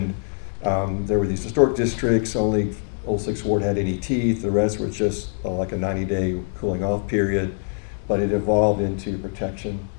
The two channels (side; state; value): right; silent; 63 dB below the other